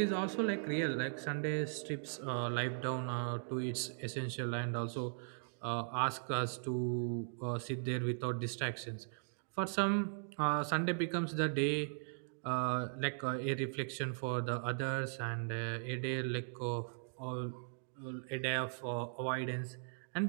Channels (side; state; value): left; silent; digital silence